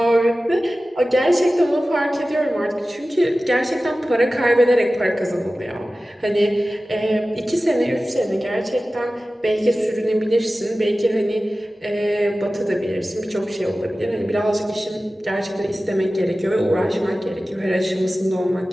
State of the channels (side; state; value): both; normal; correlation 0.96